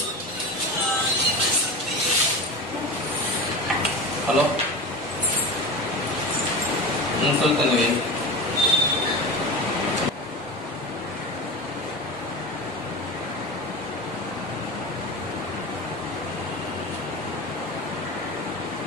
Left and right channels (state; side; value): normal; both; correlation 0.27